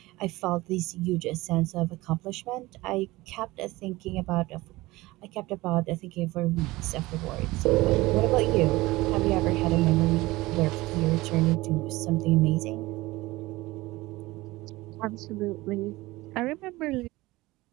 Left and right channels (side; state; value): left; quieter; 19.8 dB